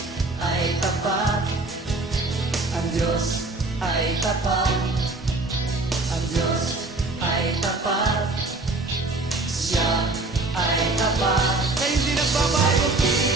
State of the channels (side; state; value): left; quieter; 3.2 dB